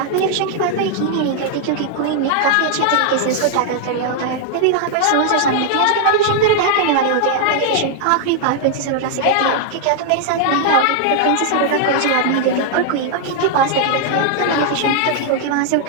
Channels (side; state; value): both; different; correlation 0.00